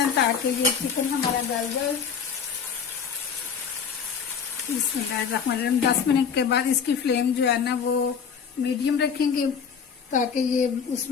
ताकि ये चिकन हमारा गल जाए। बिस्मिल्लाहिर्रहमानिर्रहीम। 10 मिनट के बाद इसकी फ्लेम जो है ना वो मीडियम रखेंगे ताकि ये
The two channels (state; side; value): quieter; right; 6.8 dB